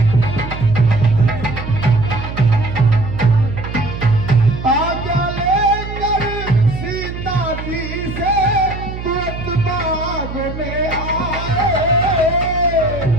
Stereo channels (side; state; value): right; noise; hum, 8 dB below the sound